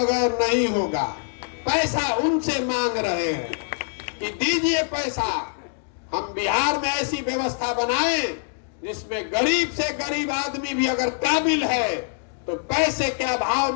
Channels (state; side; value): silent; right; digital silence